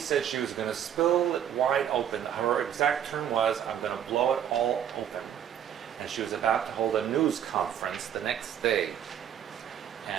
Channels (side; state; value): left; quieter; 9.7 dB